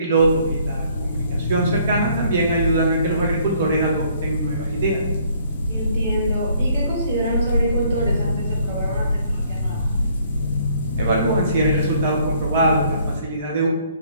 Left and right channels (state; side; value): inverted; both; correlation -0.63